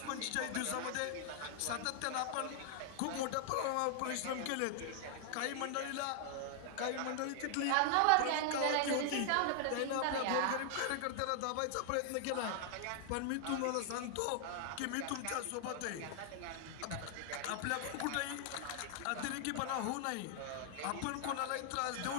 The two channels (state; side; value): different; both; correlation 0.00